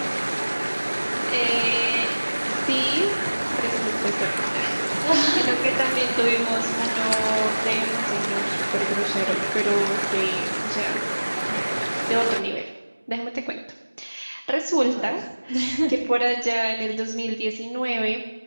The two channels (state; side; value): inverted; both; correlation -1.00